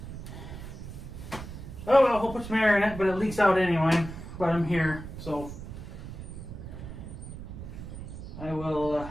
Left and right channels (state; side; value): noise; right; rumble, 10 dB below the sound